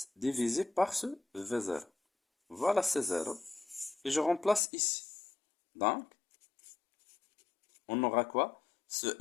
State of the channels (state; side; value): drops out; right; at 4.6 s